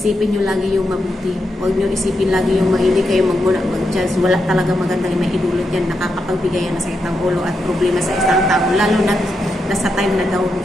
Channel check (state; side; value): normal; both; correlation 0.84